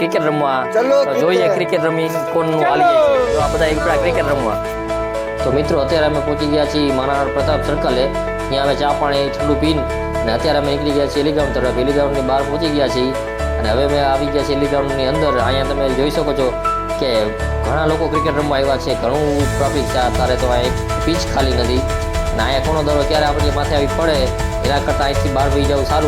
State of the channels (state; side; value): identical; both; correlation 1.00